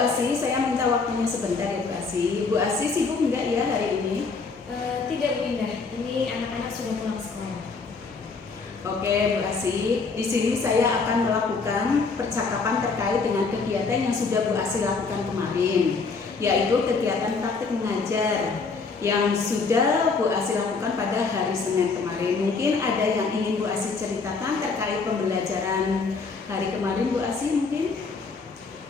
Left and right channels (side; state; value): right; quieter; 4.5 dB